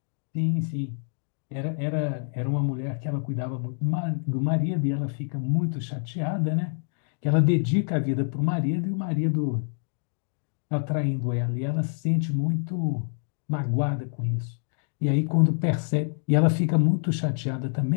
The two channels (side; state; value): right; silent; digital silence